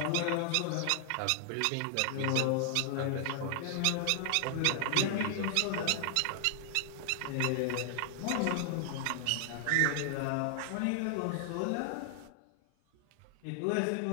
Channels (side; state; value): both; different; correlation 0.00